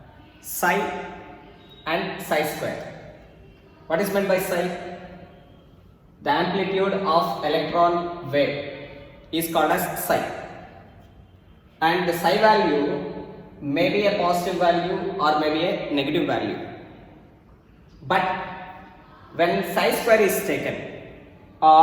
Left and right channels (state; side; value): identical; both; correlation 1.00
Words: psi and psi square. What is meant by psi? The amplitude of electron wave is called as psi. And the psi value may be a positive value or may be a negative value. But when psi square is taken